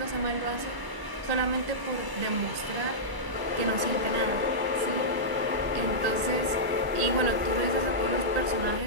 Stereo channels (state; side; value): late; left; 1.0 ms